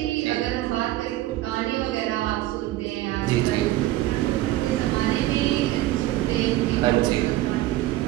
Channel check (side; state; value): left; quieter; 15.9 dB